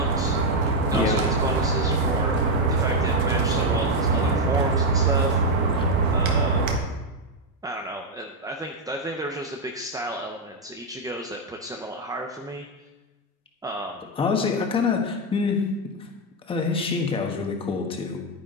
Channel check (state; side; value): normal; both; correlation 0.03